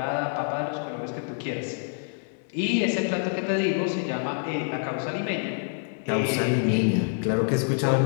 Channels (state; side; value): silent; right; digital silence